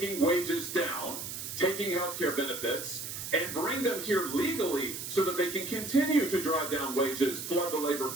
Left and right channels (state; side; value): noise; right; hiss, 7 dB below the sound